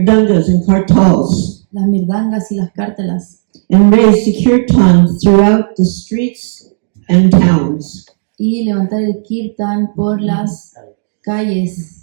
and kartals, Las mirdangas y las cártelas. and raise the kirtan throughout the streets and towns. Y levantar el kirtan por las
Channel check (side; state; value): left; silent; digital silence